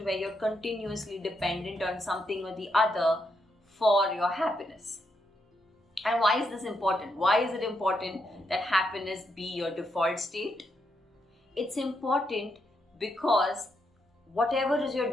where you're continuously dependent on something or the other for your happiness. And why is this important? Why is it important that happiness be your default state? It's important because whatever is your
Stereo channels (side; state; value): both; normal; correlation 0.80